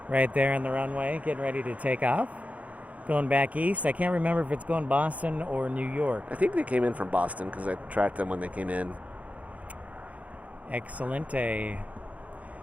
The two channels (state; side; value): late; left; 0.068 ms